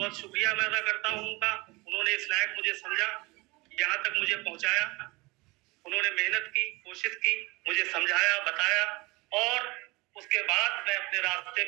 शुक्रिया मैं अदा करता हूँ उनका। उन्होंने इस लायक मुझे समझा, यहाँ तक मुझे पहुँचाया। उन्होंने मेहनत की, कोशिश की, मुझे समझाया, बताया और उसके बाद मैं अपने रास्ते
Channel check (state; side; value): quieter; left; 24.1 dB